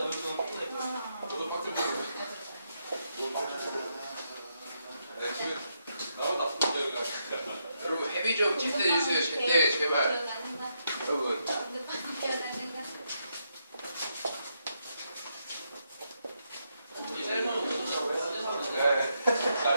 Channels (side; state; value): both; inverted; correlation -0.80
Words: 여러분 헤비 좀 집대해주세요. 제발. 여러분.